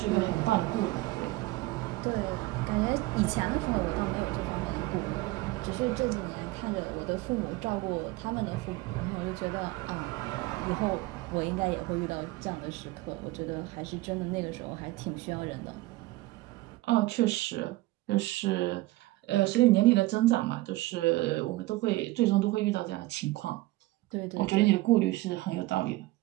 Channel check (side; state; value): left; quieter; 19.2 dB